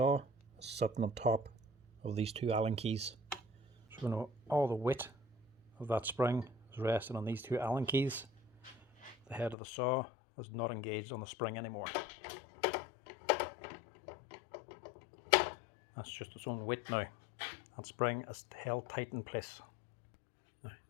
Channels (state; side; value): drops out; right; at 9.6 s